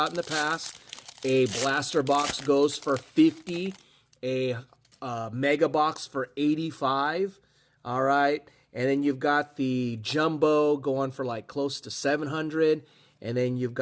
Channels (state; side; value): identical; both; correlation 1.00